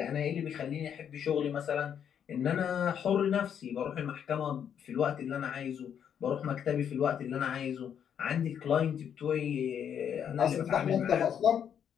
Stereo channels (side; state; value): right; quieter; 8.5 dB